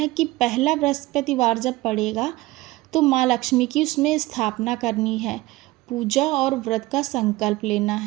कि पहला बृहस्पतिवार जब पड़ेगा तो माँ लक्ष्मी की उसमें स्थापना करनी है। पूजा और व्रत का संकल्प लेना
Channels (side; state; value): left; quieter; 19.5 dB